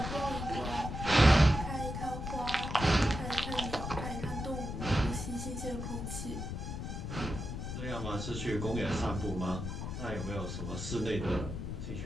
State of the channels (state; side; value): noise; left; rumble, 5 dB below the sound